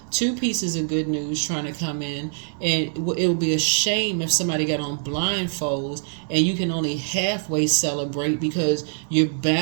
Two pieces of good news trying to come in, and it would be a shame if somebody got on blindfolds and you can only halfway celebrate because you're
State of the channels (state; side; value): silent; left; 63 dB below the other